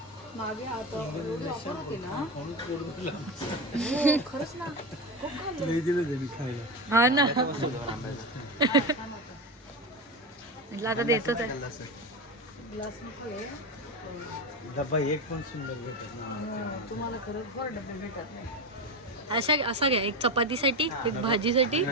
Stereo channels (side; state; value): both; normal; correlation 0.19